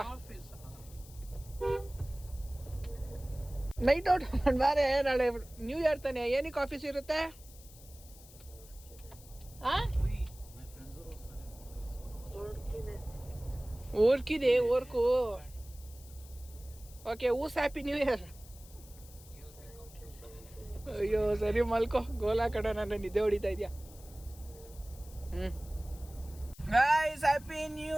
ನೈಟ್ ಔಟ್ ಬಾರೆ. ನಾಳೆ ನ್ಯೂ ಇಯರ್ ತಾನೆ, ಏನಕ್ಕೆ ಆಫೀಸ್ ಇರುತ್ತೆ? ಊರ್ಕಿದೆ ಊರ್ಕು. ಓಕೆ, ಊಸ್ ಹ್ಯಾಪಿ ನ್ಯೂ ಇಯರ್. ಅಯ್ಯೋ ಸರಿ, ಮಲ್ಕೋ. ಗೋಲಾ ಕಡೆ ನನ್ನ ನಿದ್ದೆ ಹೊಡಿತಾ ಇದೆಯಾ? ಗೈಸ್, ಹ್ಯಾಪಿ ನ್ಯೂ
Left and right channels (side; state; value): left; noise; hiss, 21 dB below the sound